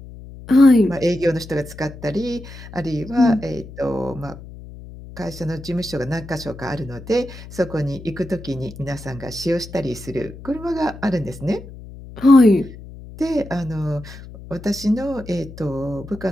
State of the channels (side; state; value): left; noise; hum, 15 dB below the sound